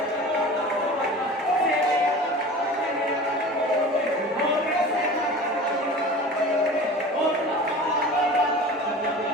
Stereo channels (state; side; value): normal; both; correlation 0.37